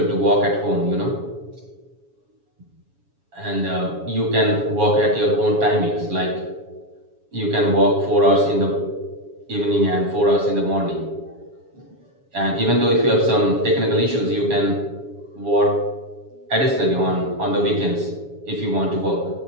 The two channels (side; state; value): left; late; 7.2 ms